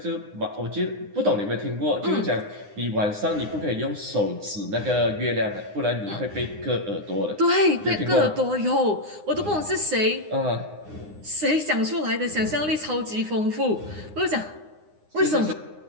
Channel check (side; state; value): left; late; 9.7 ms